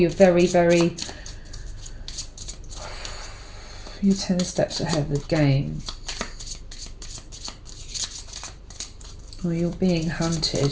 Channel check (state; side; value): identical; both; correlation 1.00